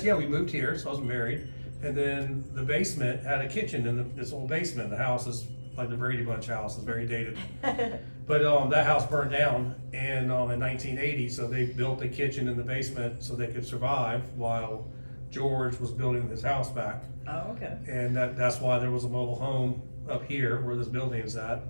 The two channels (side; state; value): both; inverted; correlation -1.00